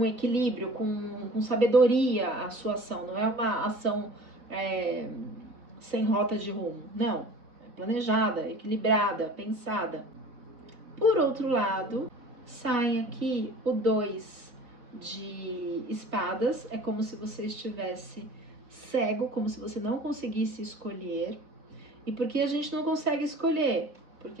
equilíbrio, com sabedoria a sua ação. Não é uma ação sem rota de rumo. Não. É planejada, equilibrada, pensada. Por outro lado, sai aqui o 2 de espadas. É como se você estivesse cego, como se você não conseguisse escolher. E por que a gente não consegue escolher?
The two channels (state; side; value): late; left; 4.1 ms